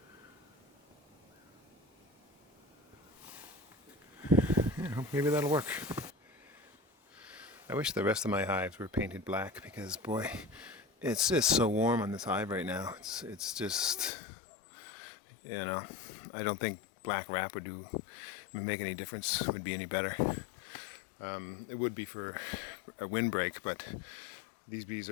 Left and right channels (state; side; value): drops out; right; at 14.1 s